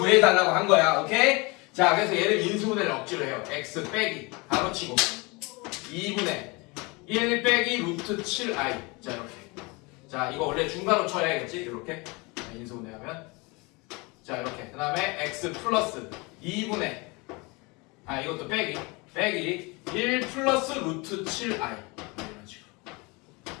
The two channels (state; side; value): quieter; right; 26.8 dB